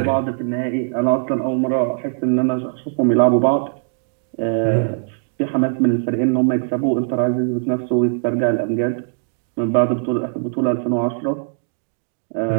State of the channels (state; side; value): silent; left; digital silence